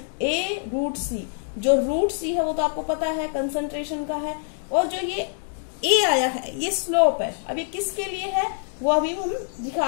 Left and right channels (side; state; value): right; silent; digital silence